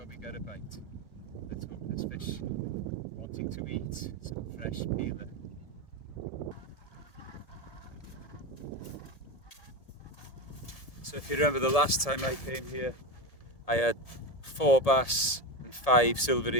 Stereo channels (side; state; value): right; late; 1.7 ms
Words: we get a bite. Let's hope this fish wanting to eat some fresh peeler. So if you remember the last time I came here, I had 4 bass and 5 silver